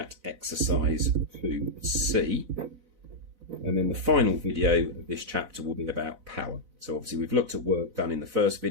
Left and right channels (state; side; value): late; left; 4.0 ms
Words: exercise 2C. And then the final video of this chapter will be about power. So obviously we've looked at work done in the first